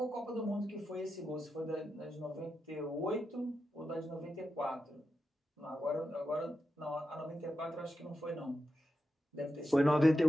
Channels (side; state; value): both; normal; correlation 0.88